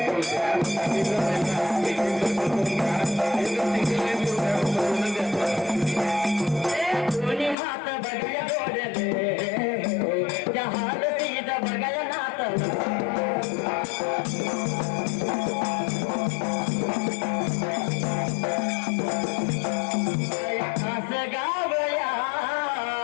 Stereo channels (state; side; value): drops out; right; at 7.6 s